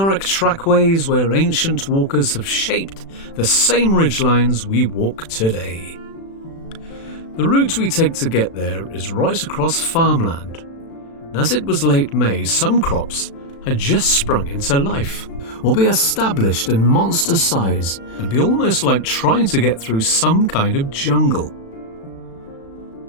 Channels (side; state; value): right; late; 36 ms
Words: trackways where ancient walkers have shaped the same ridgelines we walk today. The route we take to get there is right across farmland, and as it was late May, some crops had just sprung into life, or be established in monster size and be almost like trying to get through some kind of jungle.